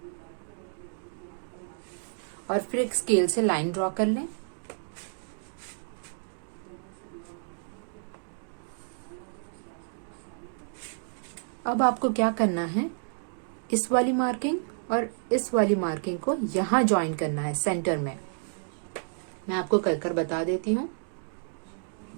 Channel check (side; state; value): left; silent; digital silence